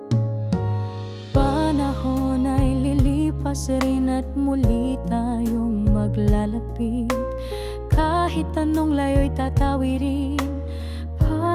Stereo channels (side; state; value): both; identical; correlation 1.00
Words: Panahon ay lilipas rin at muli tayong maglalapit. Kahit anong layo'y tatawirin